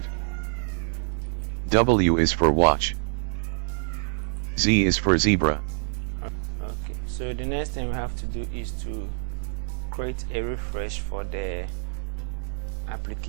W is for watch. Z is for zebra. Okay, so the next thing we have to do is to create a refresh for the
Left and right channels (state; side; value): silent; left; 61 dB below the other